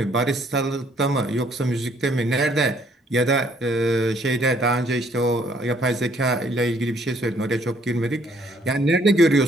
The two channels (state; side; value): normal; both; correlation 0.64